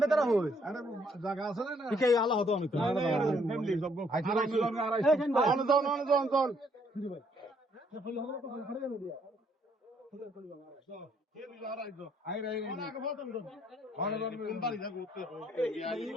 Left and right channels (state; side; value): normal; both; correlation 0.68